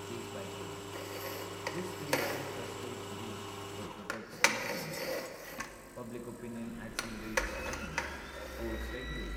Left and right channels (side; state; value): both; identical; correlation 1.00